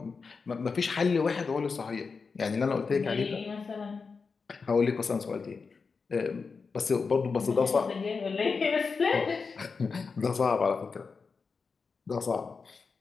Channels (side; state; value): right; quieter; 4.9 dB